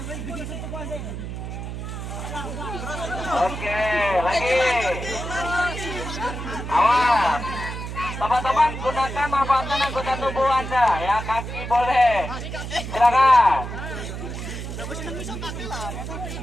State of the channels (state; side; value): noise; right; hum, 7 dB below the sound